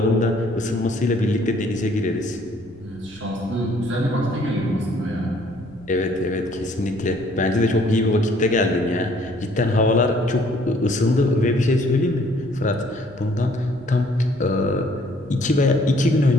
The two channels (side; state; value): left; noise; rumble, 24 dB below the sound